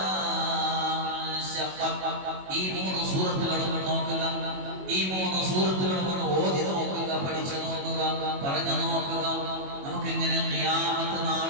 ശഖഖത്. ഈ മൂന്ന് സൂറത്തുകളും നോക്കുക, ഈ മൂന്ന് സൂറത്തുകളും ഒന്ന് ഓതി നോക്കുക, പഠിച്ചു നോക്കുക, പറഞ്ഞു നോക്കുക. നമുക്കിങ്ങനെ ഖിയാമത്ത്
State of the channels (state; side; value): late; left; 21 ms